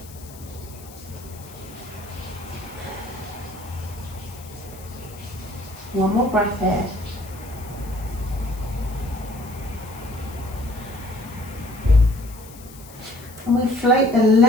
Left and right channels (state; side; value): noise; left; hiss, 19 dB below the sound